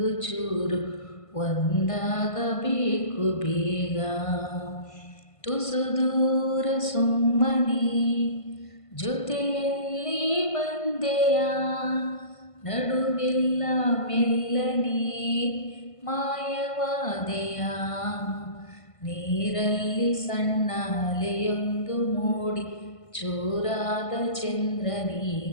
ಚೂರು ಒಂದಾಗಬೇಕು ಬೇಗ. ತುಸು ದೂರ ಸುಮ್ಮನೆ ಜೊತೆಯಲ್ಲಿ ಬಂದೆಯ, ನಡುವೆಲ್ಲ ಮೆಲ್ಲನೆ ಮಾಯವಾದೆಯ. ನೀರಲ್ಲಿ ಸಣ್ಣ ಅಲೆಯೊಂದು ಮೂಡಿ ಚೂರಾದ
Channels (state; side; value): late; right; 1.5 ms